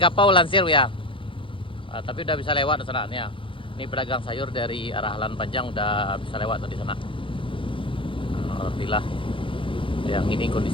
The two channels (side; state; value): right; late; 0.25 ms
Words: Lansir ya. Tapi udah bisa lewat sana nih ya. Ini pedagang sayur dari arah Alan Panjang udah bisa lewat tadi sana. Alhamdulillah. Yang ini